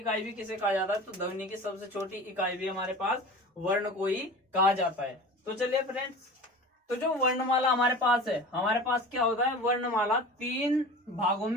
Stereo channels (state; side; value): normal; both; correlation 0.36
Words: भी किसे कहा जाता है? तो ध्वनि की सबसे छोटी इकाई भी हमारे पास वर्ण को ही कहा जाता है। तो चलिए फ्रेंड्स, तो जो वर्णमाला हमारे पास है, हमारे पास क्या होता है, वर्णमाला 3 भागों